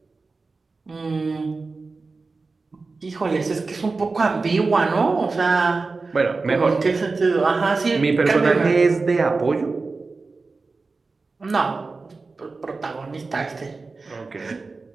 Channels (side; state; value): left; quieter; 4.0 dB